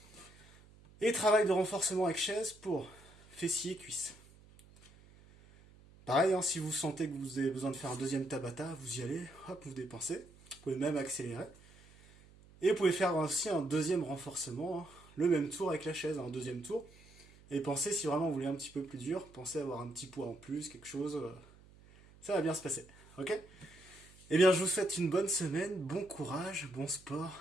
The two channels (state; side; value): noise; right; hum, 24 dB below the sound